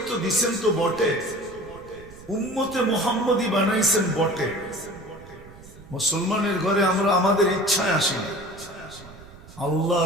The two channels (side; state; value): right; noise; rumble, 20 dB below the sound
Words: দিছেন তো বটে, উম্মতে মুহাম্মদী বানাইছেন বটে। মুসলমানের ঘরে আমরা আমাদের ইচ্ছায় আসি না,